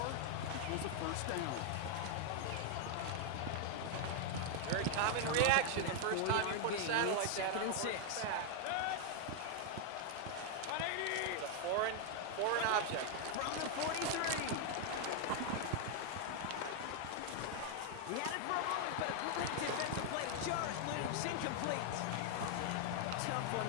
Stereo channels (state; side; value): different; both; correlation 0.00